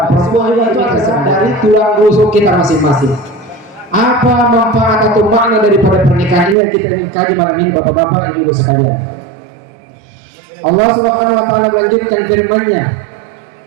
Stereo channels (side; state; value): left; drops out; at 6.6 s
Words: Perempuan itu terserah dari tulang rusuk kita masing-masing. Apa manfaat atau makna daripada pernikahan ini yang kita ingin kaji malam ini, bapak-bapak, ibu-ibu sekalian? Allah Subhanahu wa Ta'ala melanjutkan firman-Nya,